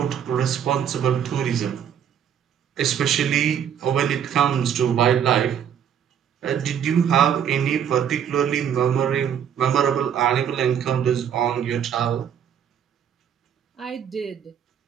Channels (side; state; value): left; quieter; 8.7 dB